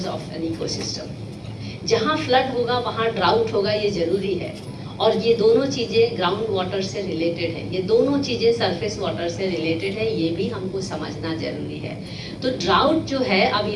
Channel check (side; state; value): both; identical; correlation 1.00